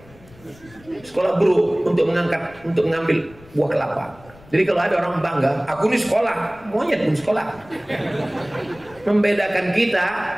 sekolah buruk untuk mengambil buah kelapa. Jadi kalau ada orang bangga, aku ini sekolah, monyet pun sekolah. Membedakan kita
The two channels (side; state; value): left; noise; rumble, 24 dB below the sound